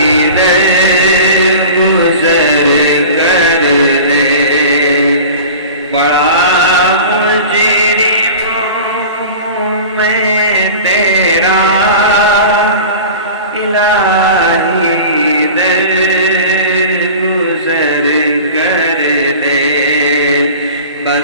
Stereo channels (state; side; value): inverted; both; correlation -0.37